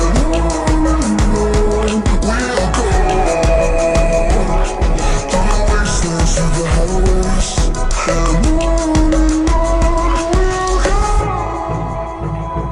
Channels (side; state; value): both; identical; correlation 1.00